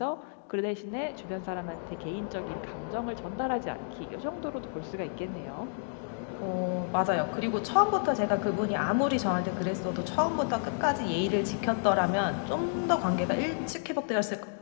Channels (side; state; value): right; silent; digital silence